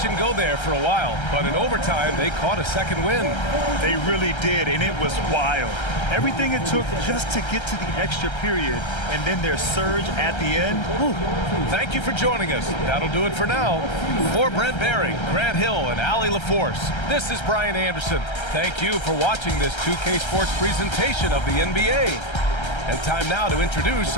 and go there for a while, but in overtime, they caught a second win. They really did, and it was wild. Everything it took just to get to the extra period, and then their surge at the end. Whew. Thank you for joining us. That'll do it for now. For Brent Barry, Grant Hill, and Allie LaForce, this is Brian Anderson. Thank you for watching this 2K Sports presentation of the NBA. And time now to introduce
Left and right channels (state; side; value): late; right; 1.3 ms